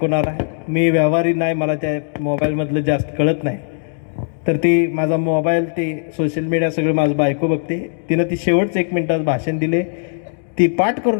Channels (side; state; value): right; silent; digital silence